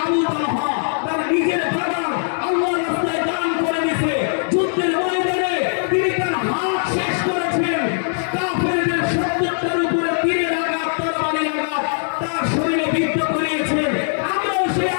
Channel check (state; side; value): silent; right; digital silence